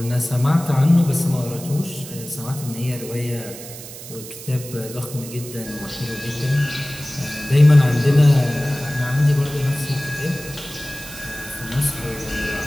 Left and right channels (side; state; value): right; noise; hiss, 13 dB below the sound